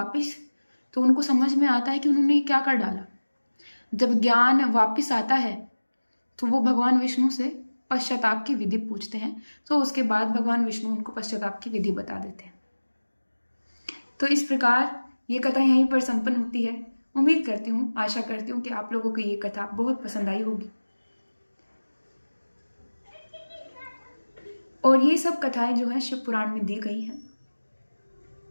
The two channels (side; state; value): both; inverted; correlation -1.00